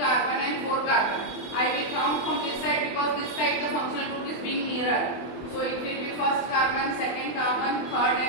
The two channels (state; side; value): late; right; 24 ms